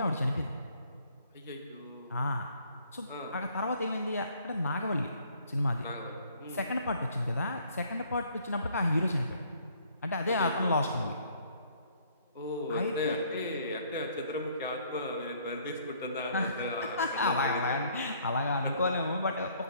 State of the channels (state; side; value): inverted; both; correlation -0.61